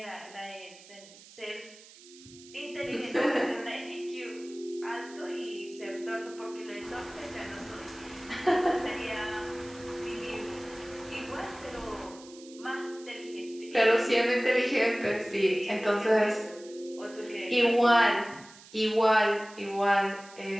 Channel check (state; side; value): noise; right; hiss, 21 dB below the sound